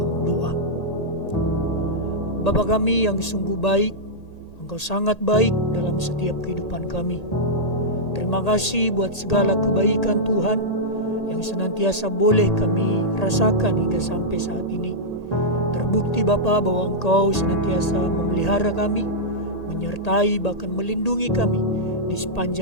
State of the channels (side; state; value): right; late; 1.8 ms